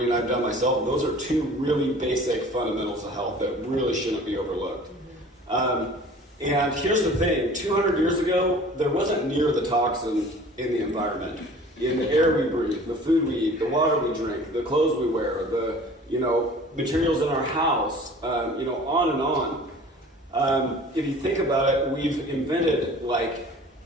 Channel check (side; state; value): both; normal; correlation 0.46